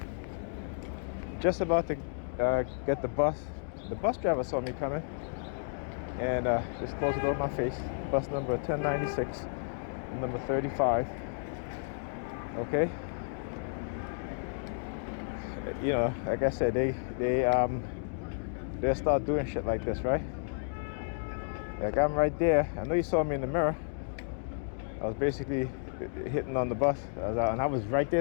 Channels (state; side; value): silent; right; digital silence